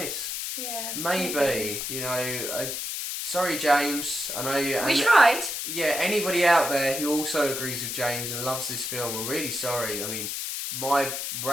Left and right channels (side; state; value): left; noise; hiss, 4 dB below the sound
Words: Yeah. Maybe. Sorry, James. I know you. We tried. Yeah, anybody out there who also agrees with James and loves this film, I'm really sorry. I mean, my